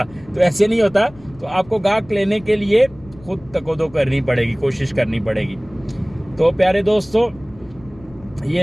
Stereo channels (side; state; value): left; noise; rumble, 23 dB below the sound